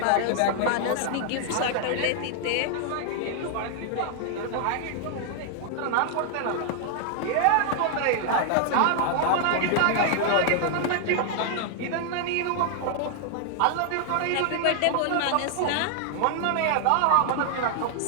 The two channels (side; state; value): both; different; correlation 0.00